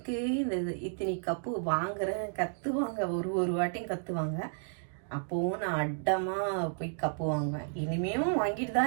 இத்தனை கப்பு வாங்குறேன் கற்றுவாங்க. ஒரு வாட்டியும் கற்றுவாங்க. அப்போவும் நான் அட்டமாக போய் கப்பு வாங்குவேன். இனிமேலும் வாங்கிட்டு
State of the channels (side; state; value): left; silent; digital silence